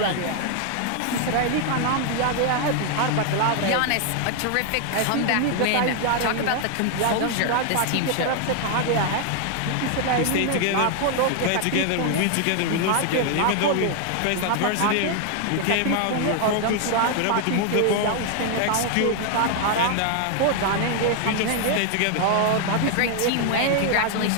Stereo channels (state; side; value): different; both; correlation 0.00